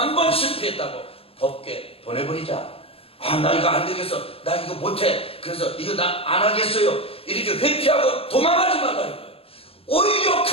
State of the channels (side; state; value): right; late; 0.28 ms